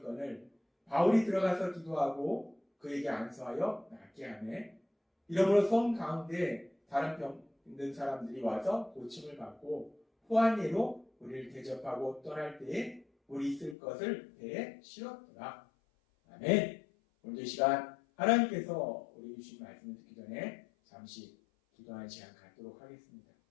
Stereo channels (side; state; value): right; drops out; at 13.8 s